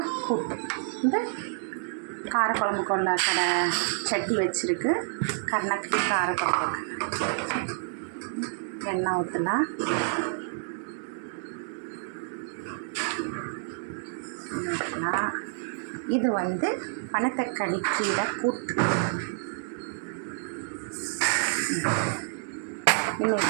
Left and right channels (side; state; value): left; silent; digital silence